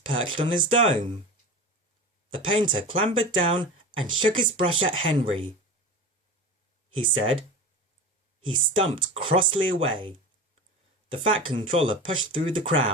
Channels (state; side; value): normal; both; correlation 0.31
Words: perched on his dome. The painter clambered down and shook his brush at Henry. He said. He stumped crossly away. The Fat Controller pushed through the